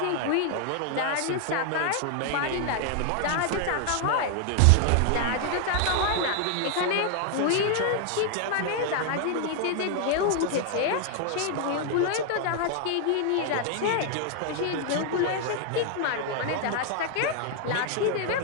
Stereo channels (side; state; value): both; different; correlation 0.00